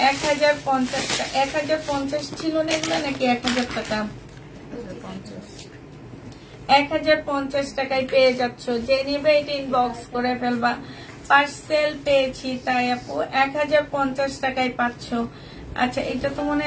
1050 টাকা। 1050 ছিল না এগুলো, নাকি 1000 টাকা? 1050 টাকায় পেয়ে যাচ্ছ। যে নিবে এটা ইনবক্স করে ফেলবা। পার্সেল পেয়েছি তাই আপু 1050 টাকায় পাচ্ছ। আচ্ছা, এটা তো মনে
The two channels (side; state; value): both; identical; correlation 1.00